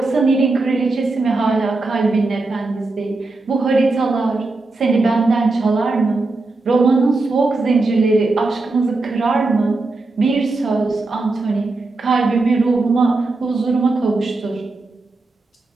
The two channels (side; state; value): left; quieter; 3.4 dB